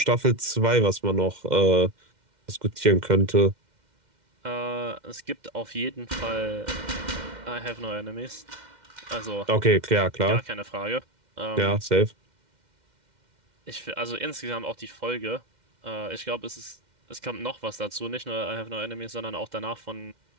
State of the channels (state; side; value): late; left; 2.1 ms